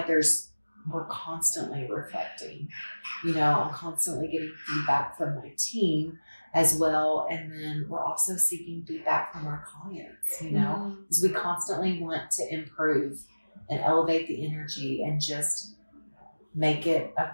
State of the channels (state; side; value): inverted; both; correlation -1.00